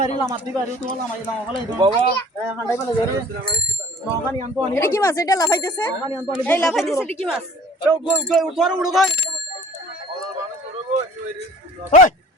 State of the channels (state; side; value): normal; both; correlation 0.50